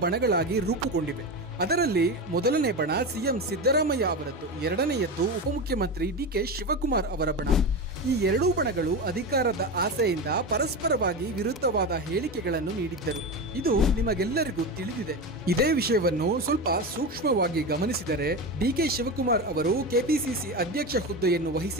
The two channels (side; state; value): both; normal; correlation 0.21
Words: ಬಣಗಳಾಗಿ ರೂಪುಗೊಂಡಿವೆ. ಅದರಲ್ಲಿ ಮೊದಲನೇ ಬಣ ಸಿಎಂ ಸಿದ್ದರಾಮಯ್ಯ ಅವರದ್ದು, ಎರಡನೆಯದ್ದು ಉಪಮುಖ್ಯಮಂತ್ರಿ ಡಿಕೆ ಶಿವಕುಮಾರ್ ಅವರ ಬಣ. ಈ 2 ಬಣಗಳು ಅಧಿಕಾರದ ಆಸೆಯಿಂದ ಪರಸ್ಪರವಾಗಿ ವಿರುದ್ಧವಾದ ಹೇಳಿಕೆಗಳನ್ನು ನೀಡಿದ್ದರು. ಇದು ನಿಮಗೆಲ್ಲರಿಗೂ ತಿಳಿದಿದೆ. ಇದೇ ವಿಷಯವನ್ನು ಸ್ವಲ್ಪ ಸೂಕ್ಷ್ಮವಾಗಿ ಗಮನಿಸಿದರೆ ಡಿಕೆ ಶಿವಕುಮಾರ್ ಅವರು ಕೆಪಿಸಿಸಿ ಅಧ್ಯಕ್ಷ ಹುದ್ದೆಯನ್ನು